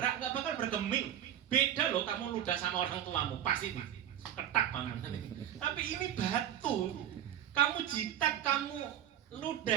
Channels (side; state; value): left; quieter; 10.9 dB